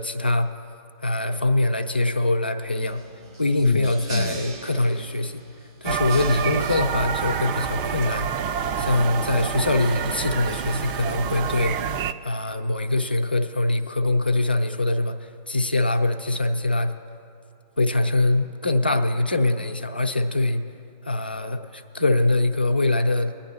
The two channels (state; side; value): inverted; both; correlation -0.79